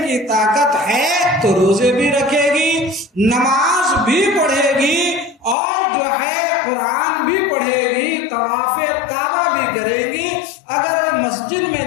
کی طاقت ہے تو روزے بھی رکھے گی، نماز بھی پڑھے گی اور جو ہے قرآن بھی پڑھے گی، طواف کعبہ بھی کرے گی۔ اگر مسجد میں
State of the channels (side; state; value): right; drops out; at 5.6 s